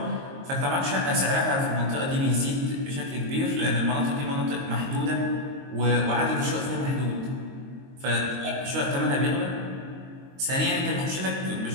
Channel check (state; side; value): late; left; 22 ms